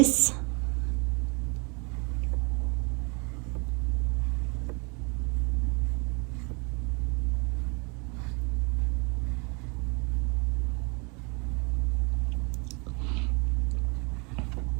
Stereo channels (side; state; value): left; quieter; 31.7 dB